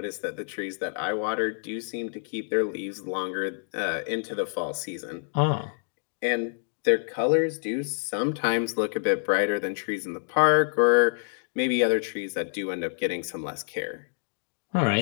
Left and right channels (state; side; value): silent; right; 60 dB below the other